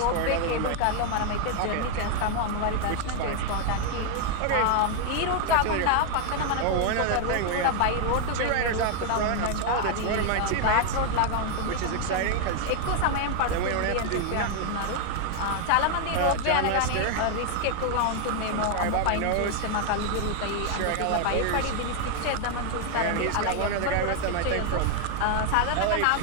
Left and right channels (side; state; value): both; different; correlation 0.00